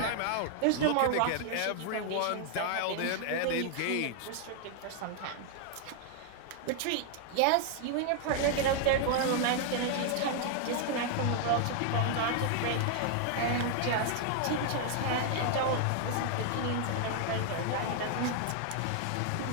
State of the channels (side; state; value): both; different; correlation 0.00